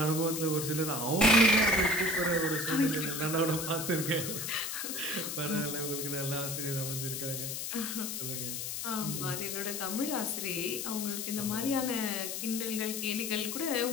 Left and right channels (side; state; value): left; noise; hiss, 4 dB below the sound